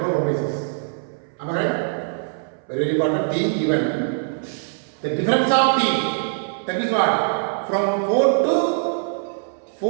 1 by 6. Am I right? Very important. T given. The difference of t. That is what? From 4 to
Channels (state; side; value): silent; left; 64 dB below the other